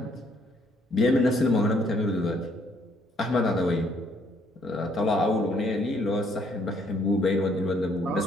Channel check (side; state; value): both; normal; correlation 0.67